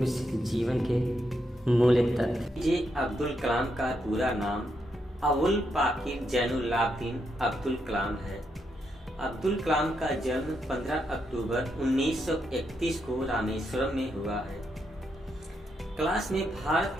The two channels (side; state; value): both; normal; correlation 0.81